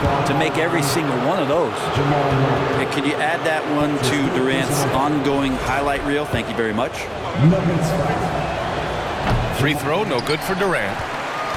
to make every single one of those. And can you add that one to Durant's ongoing highlight reel? Thank you very much. Free throw, no good for Durant.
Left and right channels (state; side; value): identical; both; correlation 1.00